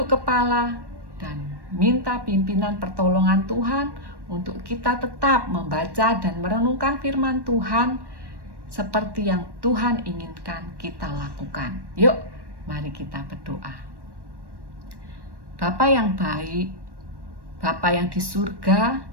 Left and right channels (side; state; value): left; late; 1.1 ms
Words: kepala, dan minta pimpinan pertolongan Tuhan untuk kita tetap membaca dan merenungkan firman Tuhan seperti yang Tuhan inginkan kita lakukan. Yuk, mari kita berdoa. Bapa yang baik, Bapa yang di surga,